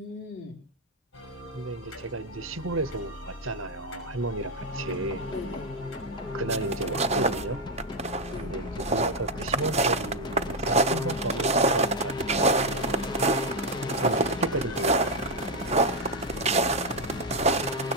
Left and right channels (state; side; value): normal; both; correlation 0.03